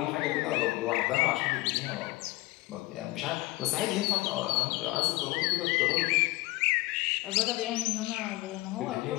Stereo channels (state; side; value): quieter; right; 20.7 dB